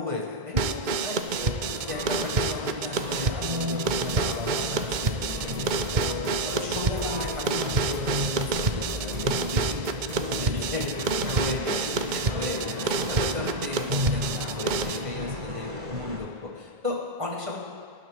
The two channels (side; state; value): left; late; 2.2 ms